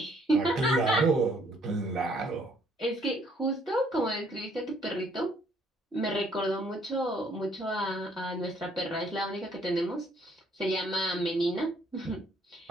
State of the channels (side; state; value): both; normal; correlation 0.65